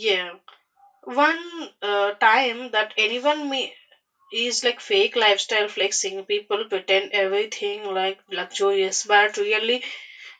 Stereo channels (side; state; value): both; identical; correlation 1.00